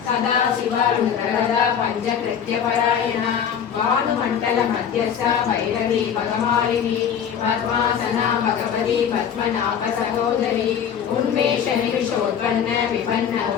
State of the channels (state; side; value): quieter; right; 8.1 dB